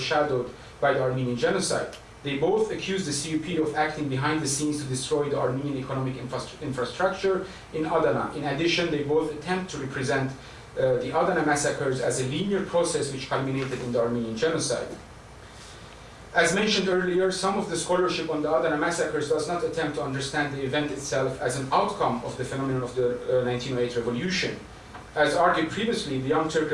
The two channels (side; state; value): both; identical; correlation 1.00